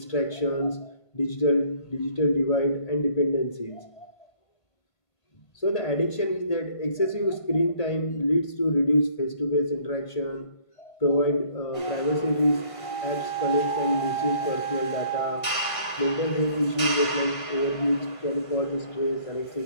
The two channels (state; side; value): late; right; 1.5 ms